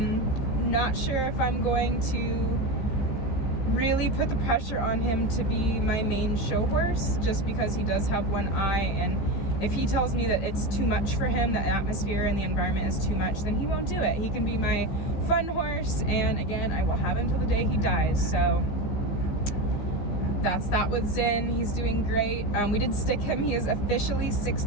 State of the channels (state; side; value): late; right; 15 ms